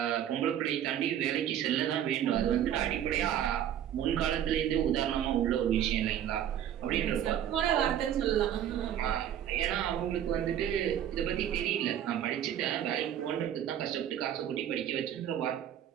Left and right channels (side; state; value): left; quieter; 10.4 dB